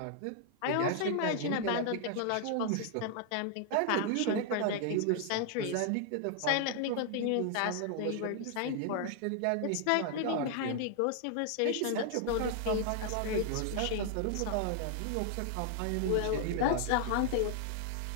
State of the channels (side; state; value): both; different; correlation 0.00